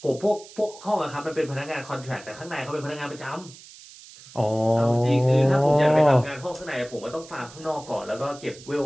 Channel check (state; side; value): noise; right; hiss, 19 dB below the sound